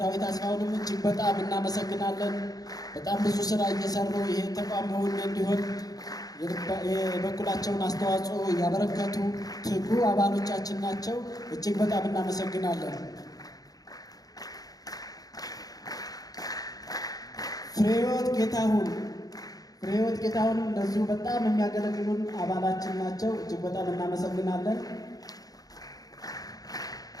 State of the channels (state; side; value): late; right; 0.18 ms